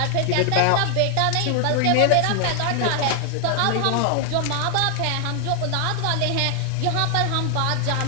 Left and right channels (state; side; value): different; both; correlation 0.00